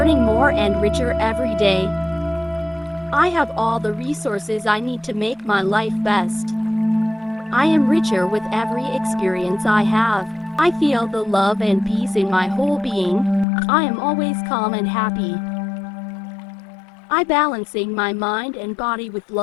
more and richer every day. I have all the resources I need to make my life best. I am richer with every experience I have. I feel the love and peace in my whole being. I am always calm and happy. I balancing my mind and body with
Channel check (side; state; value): right; drops out; at 13.5 s